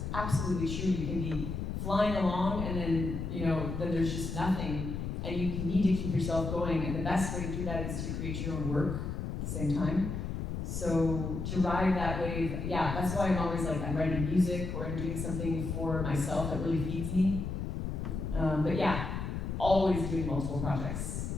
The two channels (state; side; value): noise; left; rumble, 4 dB below the sound